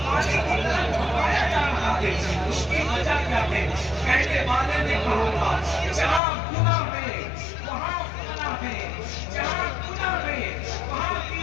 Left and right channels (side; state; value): right; drops out; at 6.2 s